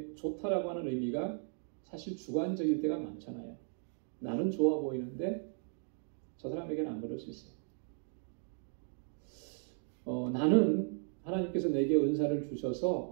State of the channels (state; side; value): silent; left; 54 dB below the other